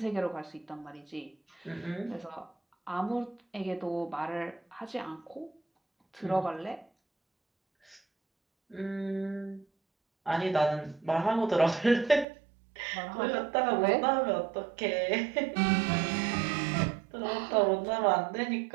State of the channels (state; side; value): drops out; left; at 12.2 s